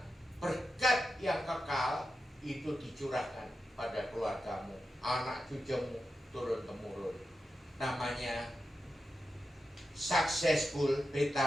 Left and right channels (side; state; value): both; normal; correlation 0.90